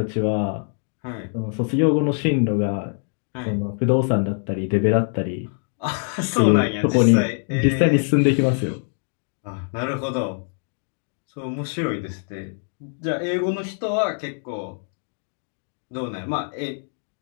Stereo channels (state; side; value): silent; right; 60 dB below the other